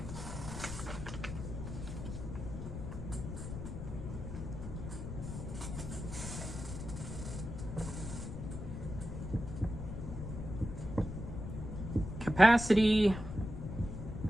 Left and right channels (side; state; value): left; noise; rumble, 6 dB below the sound